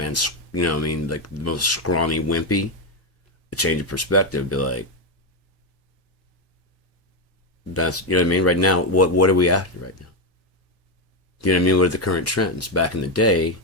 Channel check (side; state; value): both; normal; correlation 0.07